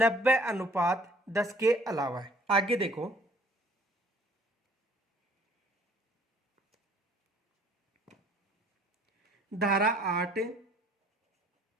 के अलावा है। आगे देखो, धारा 8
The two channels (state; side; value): normal; both; correlation 0.56